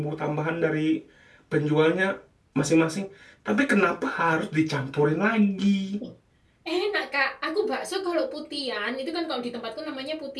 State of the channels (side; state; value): both; identical; correlation 1.00